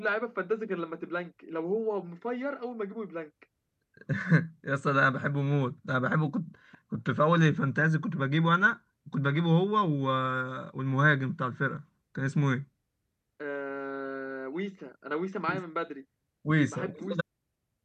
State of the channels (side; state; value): both; identical; correlation 1.00